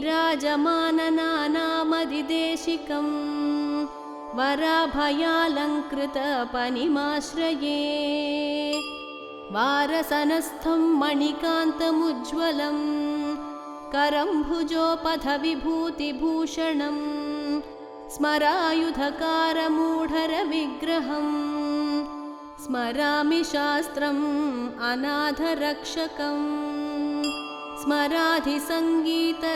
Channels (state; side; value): identical; both; correlation 1.00